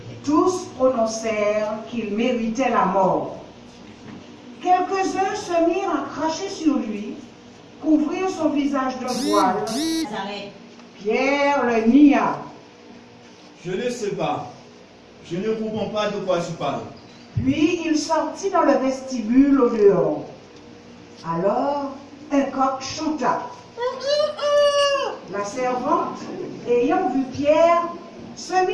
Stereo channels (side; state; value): both; identical; correlation 1.00